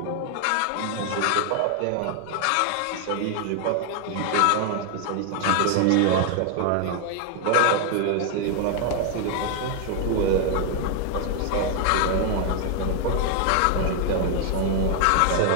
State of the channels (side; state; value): both; different; correlation 0.00